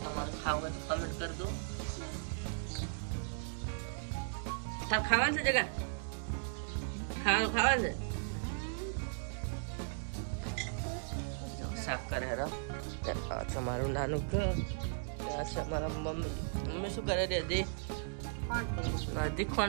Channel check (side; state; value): left; silent; digital silence